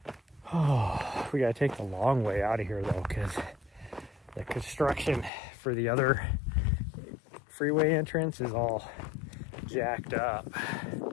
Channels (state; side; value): drops out; right; at 5.3 s